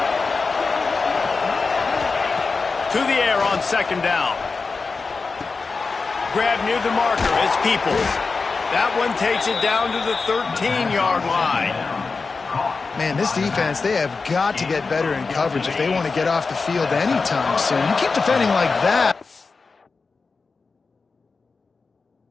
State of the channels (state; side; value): quieter; right; 4.4 dB